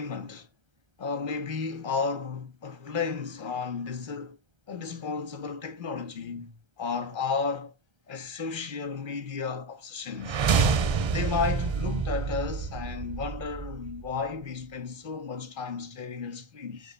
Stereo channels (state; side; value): late; left; 1.3 ms